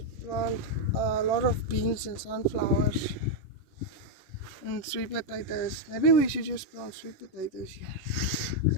plant a lot of beans and sunflowers and sweet potatoes. Maybe we should just plant sweet potatoes here.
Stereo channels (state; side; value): late; right; 11 ms